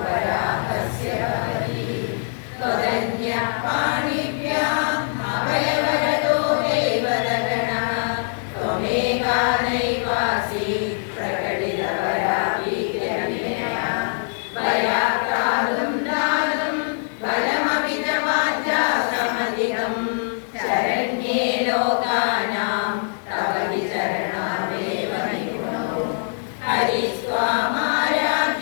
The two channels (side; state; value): right; silent; digital silence